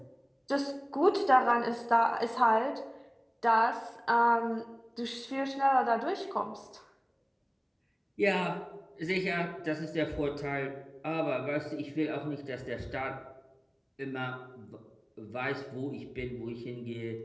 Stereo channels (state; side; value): identical; both; correlation 1.00